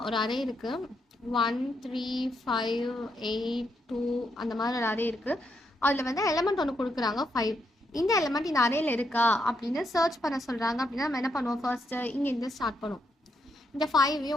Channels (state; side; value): normal; both; correlation 0.79